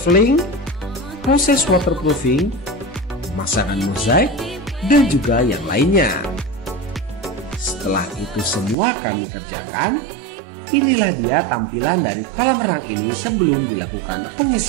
proses waterproofing, pemasangan mozaik, dan juga yang lainnya. Setelah itu semua kami kerjakan, inilah dia tampilan dari kolam renang ini sebelum dilakukan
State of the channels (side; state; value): left; drops out; at 8.8 s